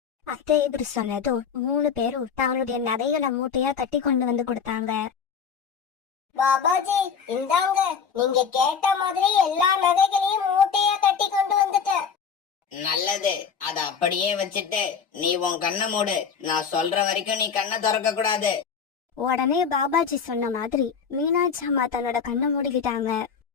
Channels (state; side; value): quieter; right; 6.5 dB